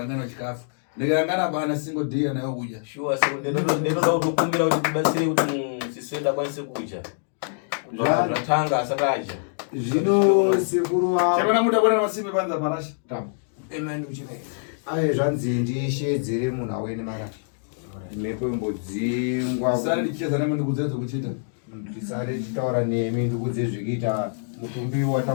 chikafu. Ndikangana bana single day nayo kuja. Sure so ndinoda kukumbira kuti tibatsire kuti siswenda kwanise kuja. Zvatanga asataja. Zvino sekuru wa Chemana muda bwana masimba panza marasha. Tambo. Amen uchine. Zvanzi ndishedzere munhu awene mara. Mhepo imbodzingwa. Sari ndicheza nami ndikudzedzo kuchita. Ndisare nditaura nemi ndikudze zvikita mutumbi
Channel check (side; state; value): right; silent; digital silence